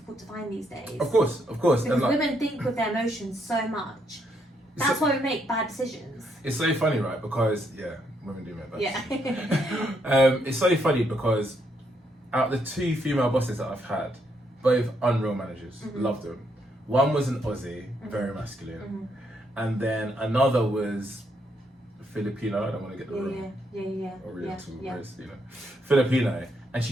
to find these days. Of course. Because women think with their emotions so much. That's why we make bad decisions. It's so funny, right? Because women do make bad decisions. Yeah. It's so funny because out of the 2 female bosses that I've had, both unreal managers, loved them. One was an Aussie, very masculine, and then another was Filipino. I don't want to get the wrong Oriental, Filipino, and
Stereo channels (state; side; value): normal; both; correlation 0.75